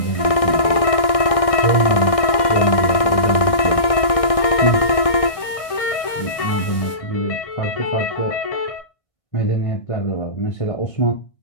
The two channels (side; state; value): right; late; 1.6 ms